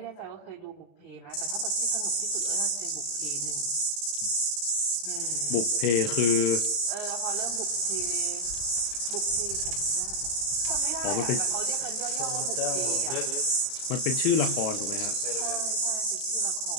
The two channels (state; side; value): late; right; 34 ms